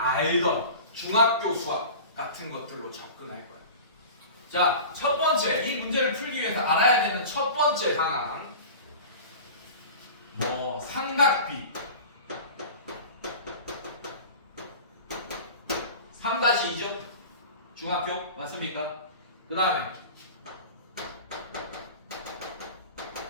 중학교 수학 같은 것들로 접근할 거예요. 자, 첫 번째, 이 문제를 풀기 위해서 알아야 되는 첫 번째 상황. 삼각비 3-2죠? 중학교 맞습니까? 그 다음에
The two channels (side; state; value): both; inverted; correlation -0.36